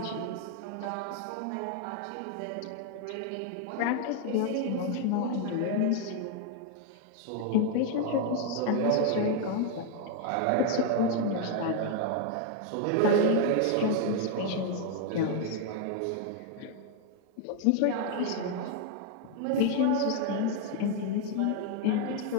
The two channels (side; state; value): both; different; correlation 0.00